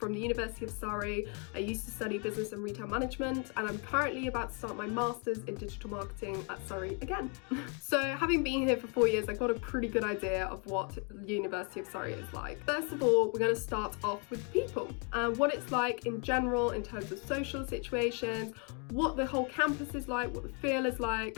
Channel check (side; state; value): right; quieter; 36.4 dB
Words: the University of Surrey. I used to study business and retail management, and I'm currently about to start my master's in digital marketing at Surrey again. So having been here for 4 years, I got a pretty good idea of what the University of Surrey is like. First of all, we're going to start off with people and what it's like in general in terms of social situations, what the whole campus is like, what the feel is like,